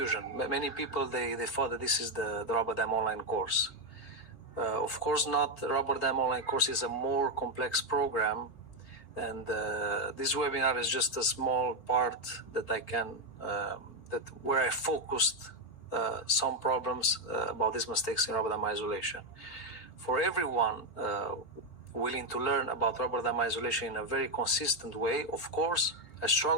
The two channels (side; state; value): right; late; 4.5 ms